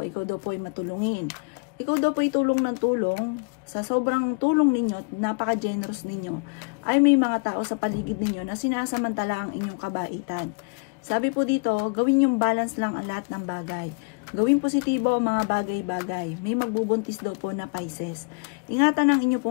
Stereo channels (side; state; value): right; quieter; 33.9 dB